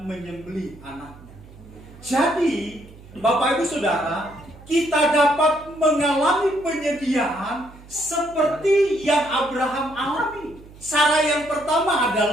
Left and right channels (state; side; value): noise; right; hum, 20 dB below the sound